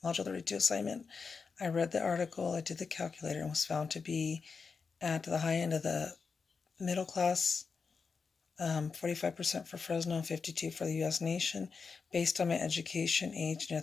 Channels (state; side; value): quieter; right; 5.1 dB